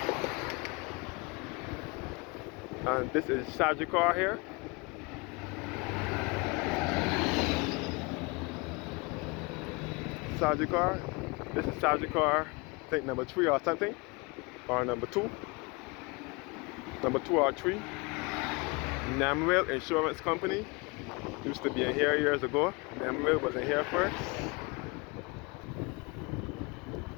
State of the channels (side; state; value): right; quieter; 27.6 dB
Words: And this is Sagicor here. Sagicor. This is Sagicor, I think number 3 or something. Or number 2. Number 2 or 3. Namwell Insurance Company used to be in here years ago. Namwell was in here first.